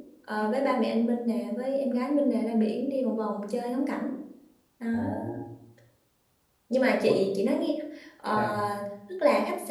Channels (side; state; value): both; identical; correlation 1.00